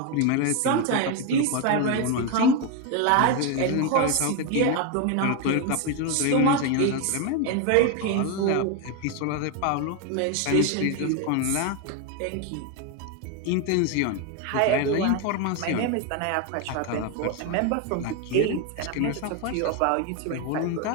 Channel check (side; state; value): both; different; correlation 0.02